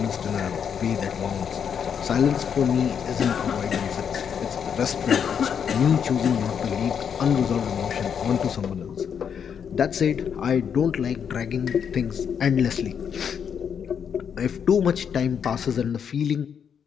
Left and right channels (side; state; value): right; quieter; 7.6 dB